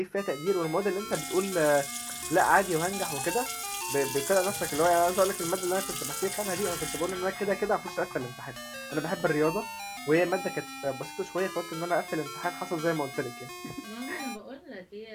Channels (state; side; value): identical; both; correlation 1.00